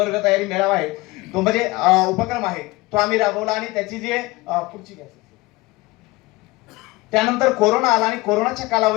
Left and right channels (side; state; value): right; quieter; 21.4 dB